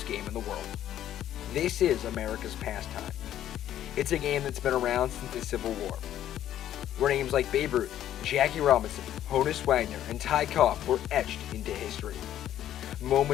game in the world." This is America's pastime. It's a game that's been around since the Civil War, where names like Babe Ruth, Jackie Robinson, Honus Wagner, and Ty Cobb were etched into history.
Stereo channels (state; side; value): quieter; right; 11.6 dB